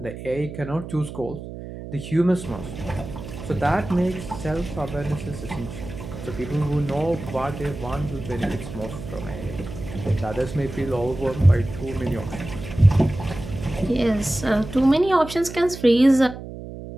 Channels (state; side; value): noise; right; hum, 11 dB below the sound